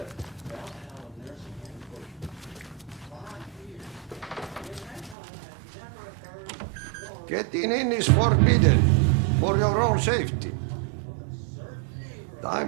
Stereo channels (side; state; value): left; drops out; at 5.2 s